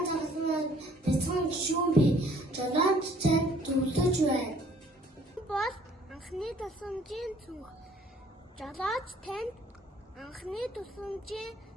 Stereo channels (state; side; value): normal; both; correlation 0.59